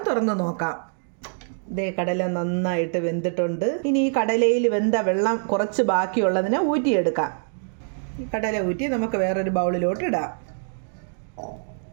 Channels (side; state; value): left; silent; digital silence